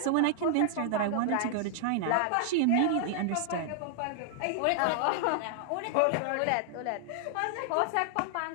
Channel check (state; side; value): different; both; correlation 0.00